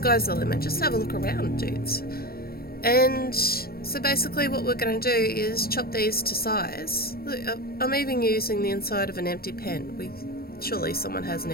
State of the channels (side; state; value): right; late; 0.44 ms